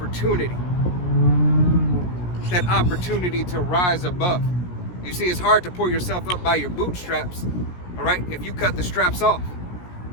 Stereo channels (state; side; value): late; right; 17 ms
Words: That opportunity to rise above. You see, it's hard to pull yourself up by your bootstraps, all right, if you cut the straps off